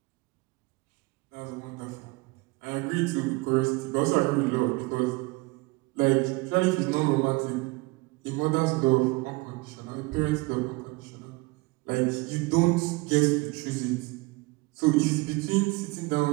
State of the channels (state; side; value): quieter; left; 24.7 dB